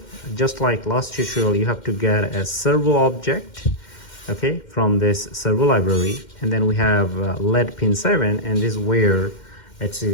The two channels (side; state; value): right; late; 2.1 ms